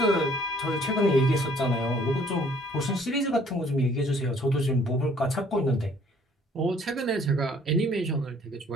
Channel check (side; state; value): both; normal; correlation 0.59